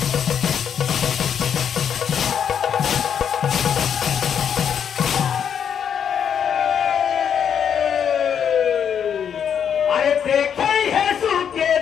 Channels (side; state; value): right; quieter; 8.1 dB